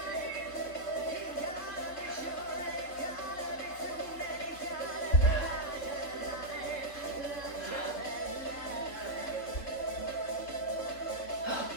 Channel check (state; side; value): late; right; 3.6 ms